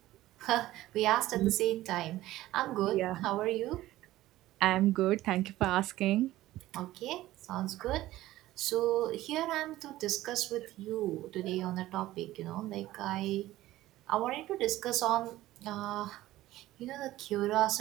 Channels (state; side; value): quieter; left; 15.8 dB